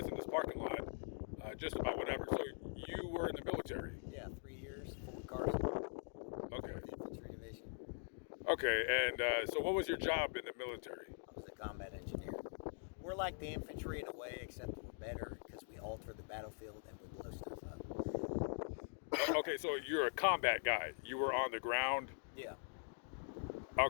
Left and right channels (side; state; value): right; silent; digital silence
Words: in this parking lot, just about whatever. So you were in the military. Yeah, 3 years, Fort Carson, Okay. 4th Infantry Division. Okay. And so what was your job in the military? I was a combat engineer. We're like the infantry in a way, except we're better because we alter the battlefield and we blow stuff up. Okay. So you're a combat guy. You were on the ground. Yeah.